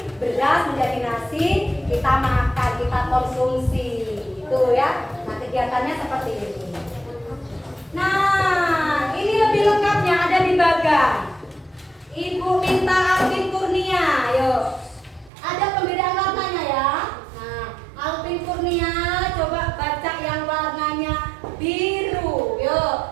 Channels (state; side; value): drops out; left; at 15.3 s